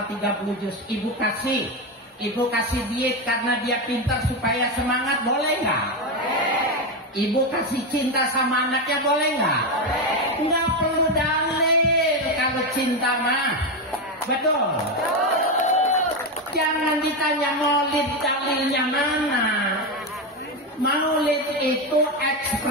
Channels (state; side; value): normal; both; correlation 0.11